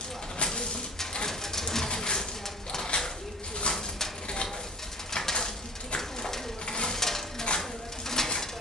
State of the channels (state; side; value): normal; both; correlation 0.42